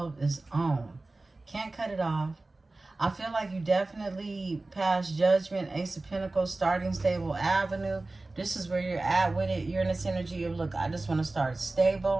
is on. Can't cut it off. I feel like you definitely passed Judgment, Ace of Pentacles, starting stable avenue. This is where you're at with it. You're in this energy of, look, I just want to start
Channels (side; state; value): left; quieter; 3.1 dB